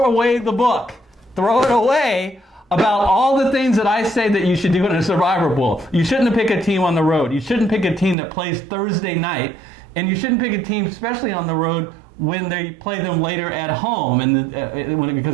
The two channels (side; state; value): left; drops out; at 8.2 s